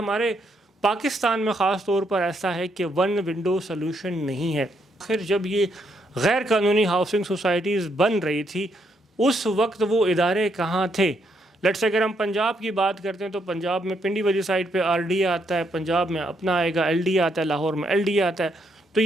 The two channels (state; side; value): normal; both; correlation 0.75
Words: پاکستان میں خاص طور پر ایسا ہے کہ ون ونڈو سلوشن نہیں ہے. آخر جب یہ غیر قانونی ہاؤسنگ سوسائٹیز بن رہی تھی اس وقت وہ ادارے کہاں تھے؟ لیٹس اگر ہم پنجاب کی بات کرتے ہیں تو پنجاب میں پنڈی والی سائڈ پہ آر ڈی آتا ہے، پنجاب میں اپنا آئے گا، ایل ڈی آتا ہے، لاہور میں ایل ڈی آتا ہے. تو